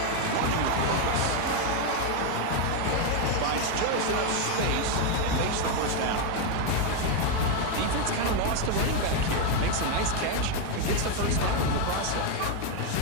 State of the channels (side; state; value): both; different; correlation 0.01